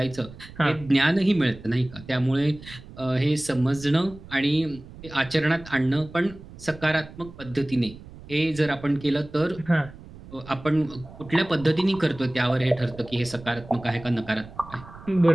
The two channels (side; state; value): right; noise; rumble, 17 dB below the sound